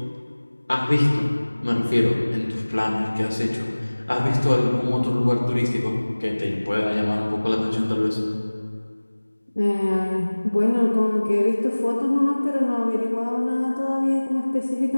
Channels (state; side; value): inverted; both; correlation -1.00